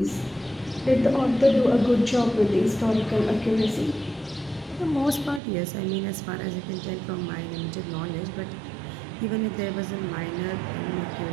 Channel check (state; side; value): drops out; left; at 5.4 s